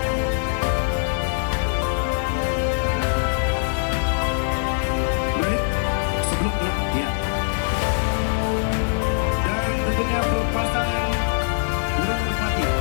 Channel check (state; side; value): silent; right; digital silence